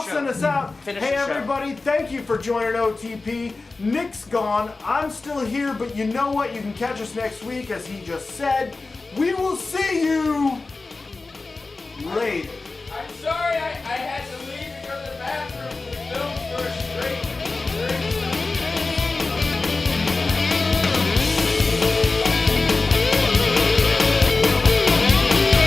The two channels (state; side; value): quieter; right; 3.6 dB